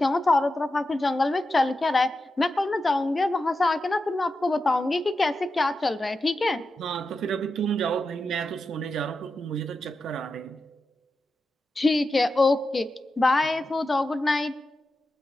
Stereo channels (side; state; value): both; normal; correlation 0.90